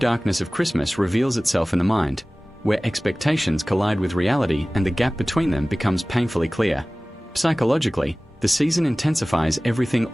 of Christmas reveals itself in the mind, where expectations collide with reality and the gap between them becomes painfully clear. Psychologically, the season intensifies everything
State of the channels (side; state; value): both; normal; correlation 0.98